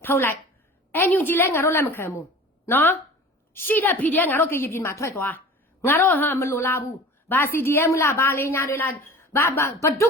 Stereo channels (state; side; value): normal; both; correlation 0.41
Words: လိုက်NUGလဲငါတို့လက်မခံဘူးနော်ရှိတဲ့ဖီတွေငါတို့ကရေပြည်မှာထွက်သွားငါတို့မလိုလားဘူးဘာ CDM လားဘာလေးညာတွေလားဘာဒု